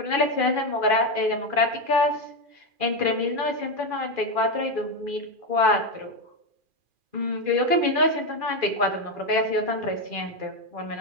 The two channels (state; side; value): late; left; 2.4 ms